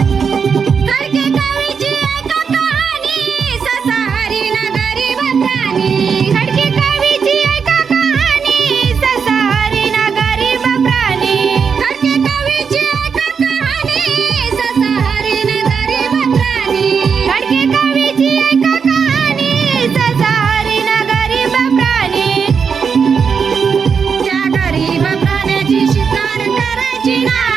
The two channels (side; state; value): left; quieter; 6.1 dB